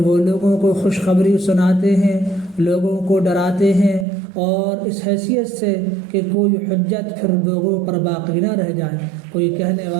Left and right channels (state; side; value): drops out; left; at 4.0 s